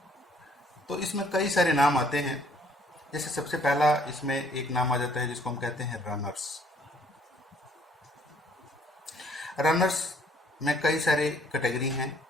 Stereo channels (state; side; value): normal; both; correlation 0.62